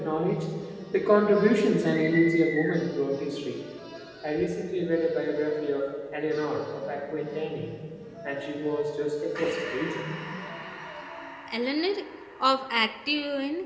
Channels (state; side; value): identical; both; correlation 1.00